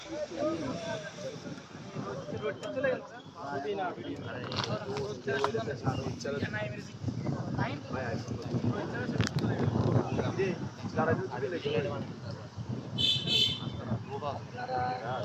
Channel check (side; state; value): both; identical; correlation 1.00